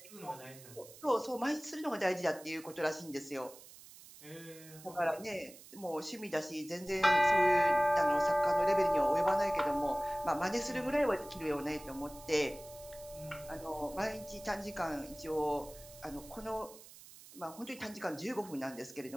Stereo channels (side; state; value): right; noise; hiss, 19 dB below the sound